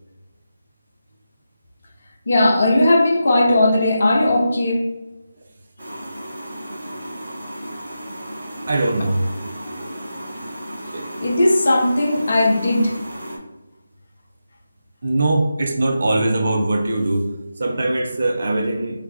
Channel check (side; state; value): both; inverted; correlation -0.89